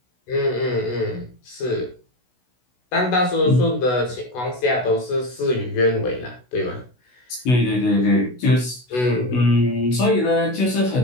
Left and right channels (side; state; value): right; late; 16 ms